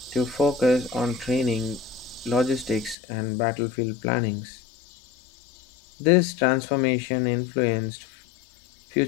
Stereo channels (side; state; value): right; drops out; at 3.0 s